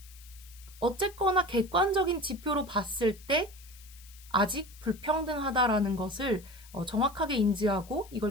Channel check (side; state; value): left; noise; hiss, 21 dB below the sound